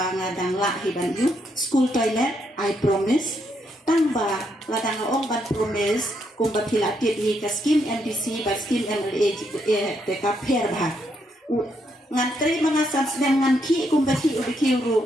dang la hiban you school toilet I promise tamba ladang ong ban promise kum ba pilatit hi ka scheme MDC ba scheme MLA te ka per ba ngantri mengasan sedang nganki kumbati ubiki uru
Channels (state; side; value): normal; both; correlation 0.77